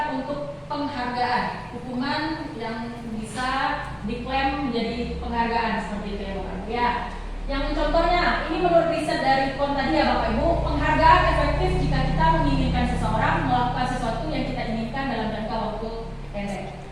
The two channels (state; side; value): identical; both; correlation 1.00